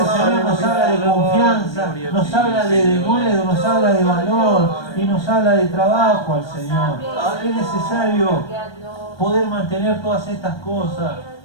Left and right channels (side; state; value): right; late; 1.2 ms